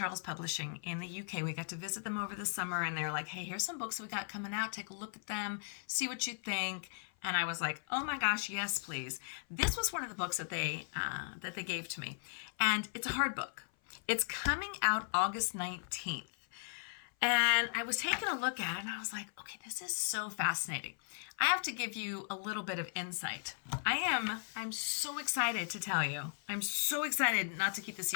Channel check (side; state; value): right; silent; 53 dB below the other